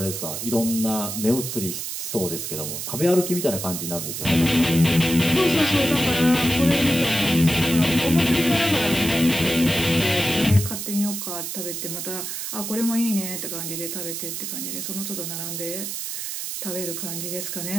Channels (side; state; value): right; noise; hiss, 5 dB below the sound